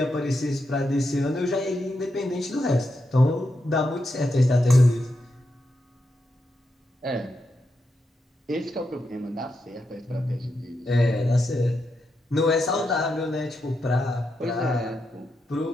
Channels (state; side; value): normal; both; correlation 0.85